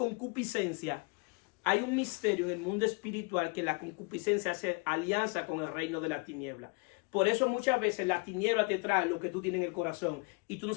hay un misterio en el mundo espiritual que la concupiscencia hace alianza con el reino de la tiniebla. Por eso muchas veces la tiniebla te trae lo que tú tienes en el corazón y tú no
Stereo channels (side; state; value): right; quieter; 31.1 dB